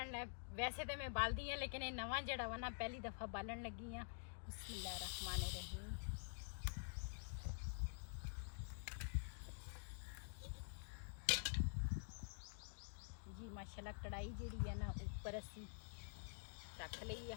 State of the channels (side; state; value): right; silent; digital silence